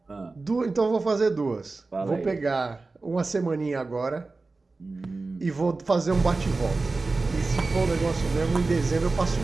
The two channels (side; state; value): left; quieter; 3.6 dB